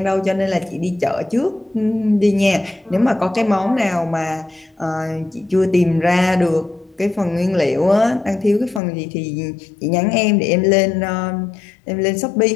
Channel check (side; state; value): right; drops out; at 8.8 s